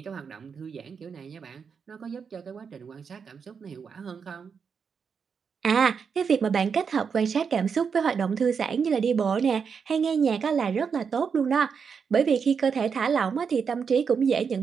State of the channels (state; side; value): quieter; left; 6.2 dB